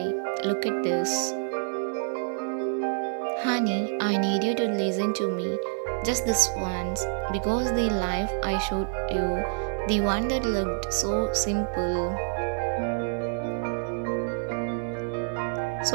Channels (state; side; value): silent; left; digital silence